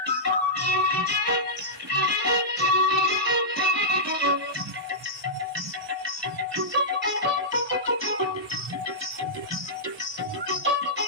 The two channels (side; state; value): both; normal; correlation -0.13